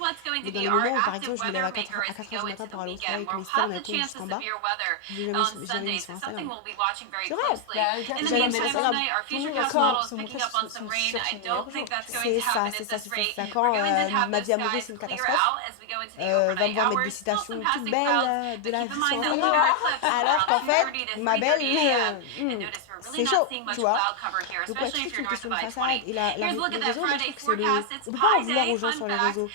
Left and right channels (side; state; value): both; different; correlation 0.00